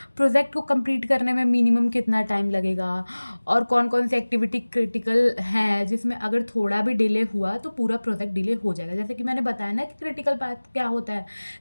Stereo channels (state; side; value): inverted; both; correlation -1.00